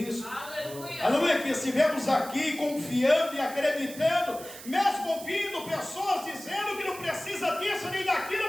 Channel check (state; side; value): noise; right; hiss, 14 dB below the sound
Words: Aleluia. Aleluia, que estivemos aqui confiando e acreditando, mesmo ouvindo pessoas dizendo que não precisa disso nem